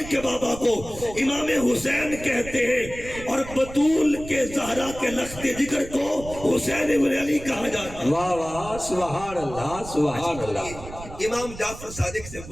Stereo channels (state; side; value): noise; right; rumble, 13 dB below the sound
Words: کے بابا کو امام حسین کہتے ہیں. اور بطول کے زہرا کے لخت جگر کو حسین ابن علی کہا جاتا ہے. واہ واہ سبحان اللہ سبحان اللہ. امام جعفر صادق سے